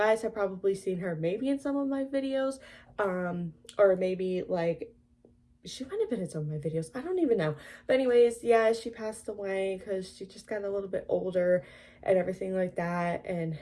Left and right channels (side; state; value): both; identical; correlation 1.00